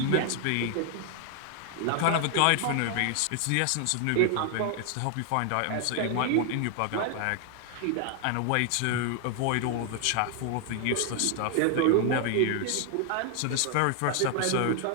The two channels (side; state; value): both; different; correlation 0.00